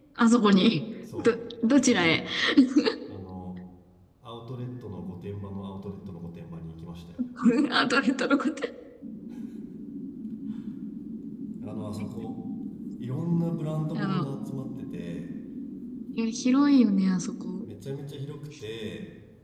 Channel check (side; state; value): both; identical; correlation 1.00